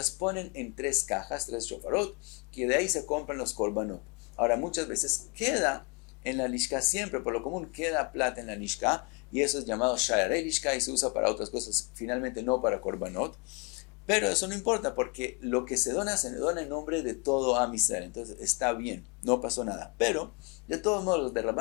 ponen en 3 cajas, 3 shofarot, que de ahí se compran los korbanot. Ahora, muchas veces queda en la lishka, siempre por lo común queda plata en la lishka, y eso es llamado sha'arei lishka y se usa para otras cosas, finalmente no para korbanot. Pero eso no importa, porque lo que se dona en nombre de todo Am Israel. Entonces está bien, no pasó nada. Pero, de todos modos, los de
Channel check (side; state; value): right; quieter; 32.9 dB